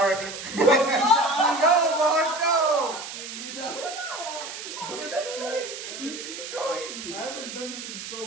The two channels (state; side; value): noise; right; hiss, 9 dB below the sound